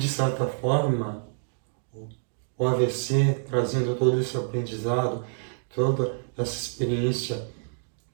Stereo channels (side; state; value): left; silent; digital silence